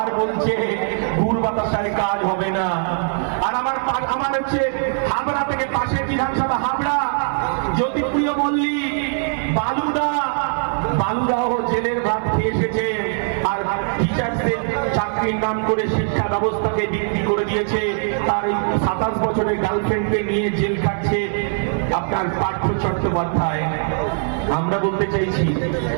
বলছে ভুল বাতাসায় কাজ হবে না। আর আমার হচ্ছে হাবড়া থেকে পাশে বিধানসভা হাবড়া জ্যোতিপ্রিয় মল্লিক বালুদাহ জেলের ভাত খেয়ে এসেছে আর টিচার্সদের চাকরির নাম করে শিক্ষা ব্যবস্থাকে বিক্রি করে দিয়েছে। তার 27 বছরের গার্লফ্রেন্ডকে নিয়ে জেল খাটছে আপনার পার্থ চট্টোপাধ্যায়। আমরা বলতে চাইছি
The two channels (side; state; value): left; silent; 61 dB below the other